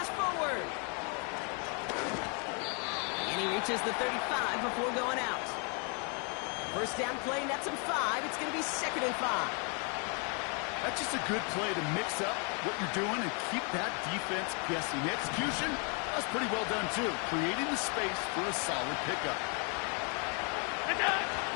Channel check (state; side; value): quieter; right; 37.1 dB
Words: forward. And he reaches the 35 before going out. 1st down play, nets him 5. It's going to be 2nd and 5. That's just a good play to mix up what you're doing and keep that defense guessing. The execution, that's pretty well done, too. Creating the space for a solid pickup.